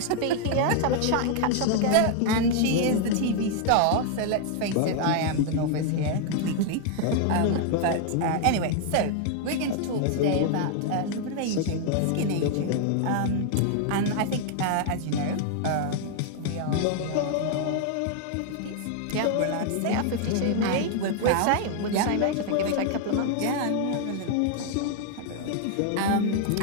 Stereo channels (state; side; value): different; both; correlation 0.00